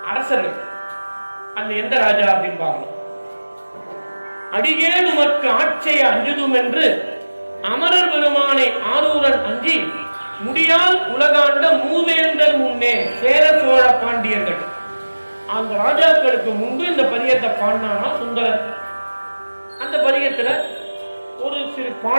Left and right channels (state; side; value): inverted; both; correlation -1.00